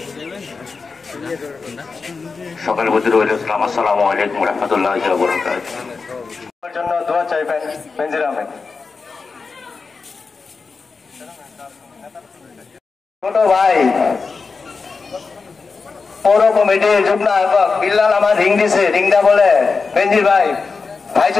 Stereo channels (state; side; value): quieter; right; 4.6 dB